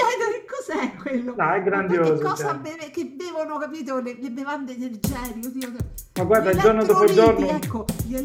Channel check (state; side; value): identical; both; correlation 1.00